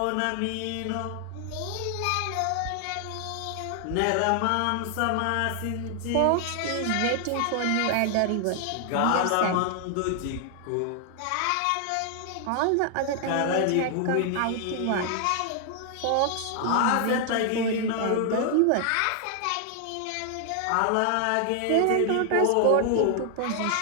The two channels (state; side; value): different; both; correlation 0.00